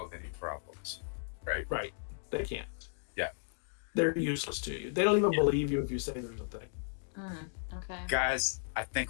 any problems, right? Right. They can't. Yeah. They're useless to you. They don't even believe you if you say there's a thing. Okay. Guys, I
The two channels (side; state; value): right; silent; digital silence